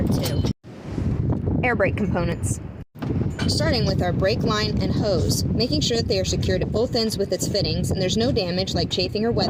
2. Air brake components. Starting with our brake line and hose, making sure that they are secured at both ends with its fittings and there's no damage like chafing or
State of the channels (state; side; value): identical; both; correlation 1.00